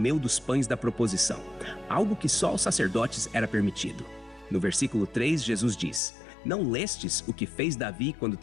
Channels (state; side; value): drops out; right; at 6.0 s